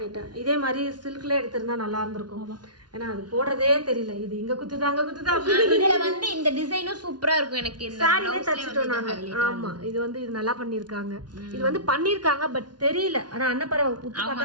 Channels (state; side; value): late; left; 0.70 ms